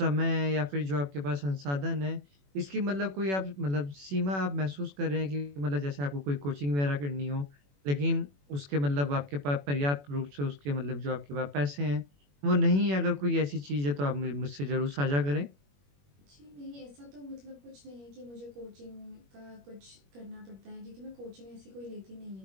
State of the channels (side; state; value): left; late; 21 ms